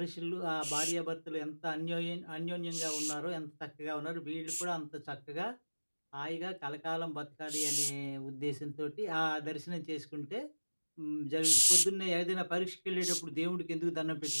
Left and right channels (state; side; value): inverted; both; correlation -1.00